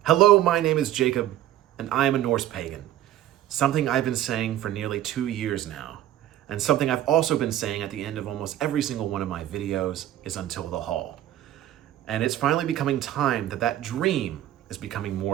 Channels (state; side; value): quieter; left; 12.8 dB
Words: Hello, my name is Jacob, and I am a Norse Pagan. Something I've been saying for nearly 2 years now, and something I've also been saying at the end of almost every single one of my videos is until the Hall. And it's finally becoming time that dream is becoming